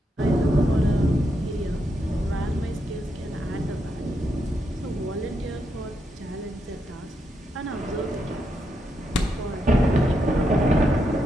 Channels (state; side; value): normal; both; correlation 0.82